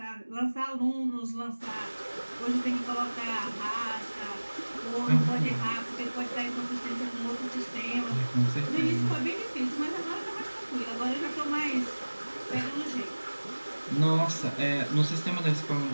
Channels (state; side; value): inverted; both; correlation -1.00